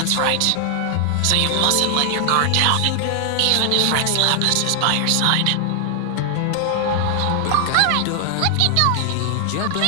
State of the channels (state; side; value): different; both; correlation 0.00